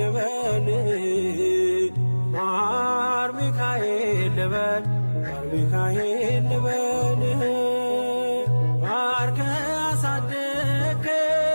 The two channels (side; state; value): both; inverted; correlation -1.00